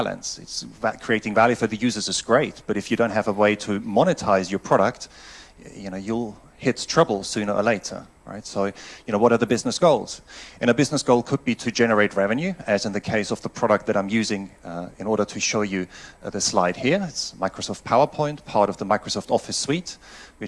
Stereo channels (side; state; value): both; identical; correlation 1.00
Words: Creating value for the users is great, but if you don't have a way to monetize your product, you'll hit trouble sooner or later, right? So, what are the business goals? And a business goal could be to generate revenue, as in the case of the product that I'm using in order to show you the slide here. It's Microsoft PowerPoint, part of the Microsoft Office suite,